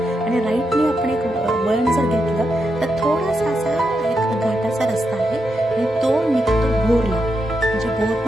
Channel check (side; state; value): both; normal; correlation 0.85